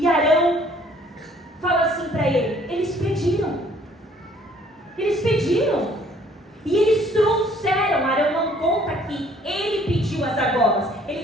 Arão fala assim para ele: eles pediram. E eles trouxeram. Arão não conta que ele pediu as argolas. Ele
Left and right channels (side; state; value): both; normal; correlation 0.59